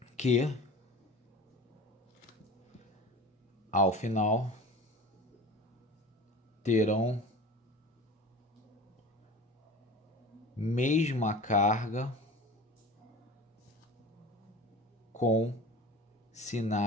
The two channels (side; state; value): both; normal; correlation 0.37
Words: que, ao final, terão mesma carga com